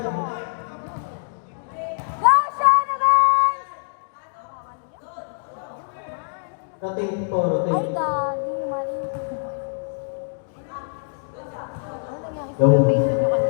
Rotate po, rotate. Ay, gagi, mali.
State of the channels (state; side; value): silent; right; digital silence